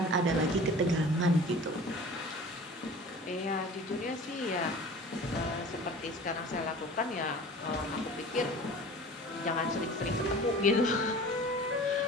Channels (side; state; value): both; normal; correlation 0.41